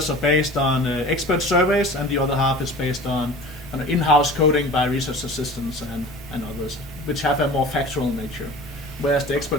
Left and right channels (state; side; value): normal; both; correlation 0.40